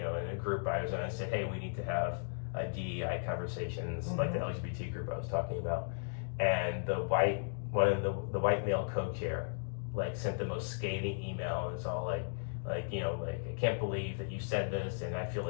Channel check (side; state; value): right; silent; digital silence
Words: a group I was in, I said, hey, we need to have DEI conversations like the LGBT group I was talking about, and the white male co-chair like sent the most scathing email. It's all like I can't believe that you said this, and I feel